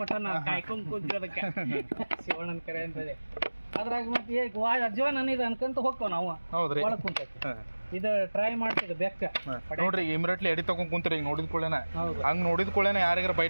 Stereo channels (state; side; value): inverted; both; correlation -1.00